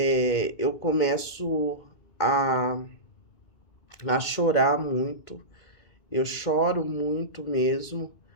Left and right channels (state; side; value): late; right; 2.2 ms